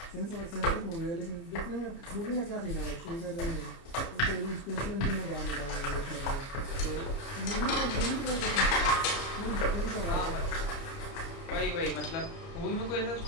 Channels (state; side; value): late; right; 30 ms